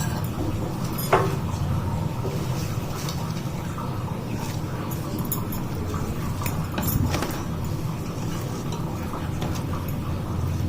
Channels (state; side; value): identical; both; correlation 1.00